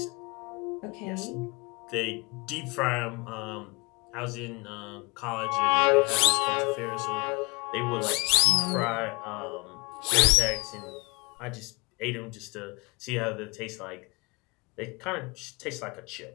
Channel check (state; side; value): quieter; right; 28.3 dB